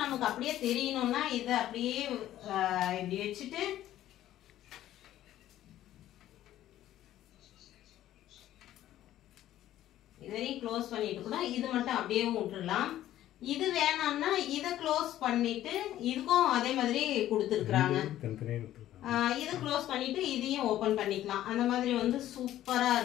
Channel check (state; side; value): quieter; right; 13.1 dB